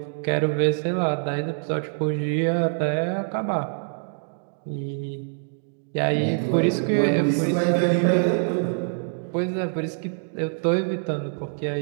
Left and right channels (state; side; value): silent; left; digital silence